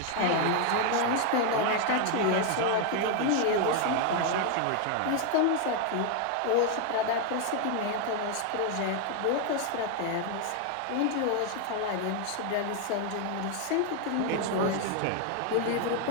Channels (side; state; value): both; different; correlation 0.00